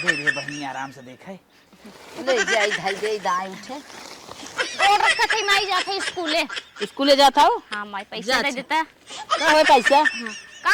दे बहनी आराम से देखे ले जाई धाई दे दाई उठे। और रखा थे माई जाते स्कूले। स्कूले जाता हो? हाँ माई पैसा जा दे अच्छा। देता है। का है पैसा? हाँ।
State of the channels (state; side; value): identical; both; correlation 1.00